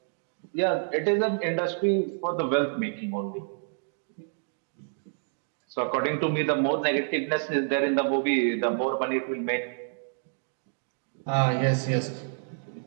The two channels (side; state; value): left; silent; digital silence